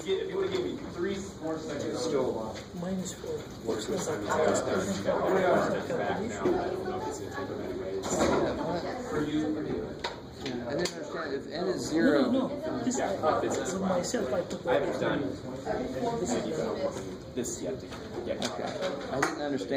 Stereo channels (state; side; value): identical; both; correlation 1.00